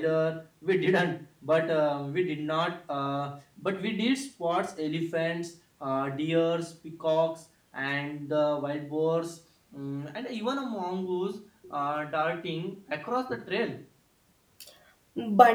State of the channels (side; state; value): both; identical; correlation 1.00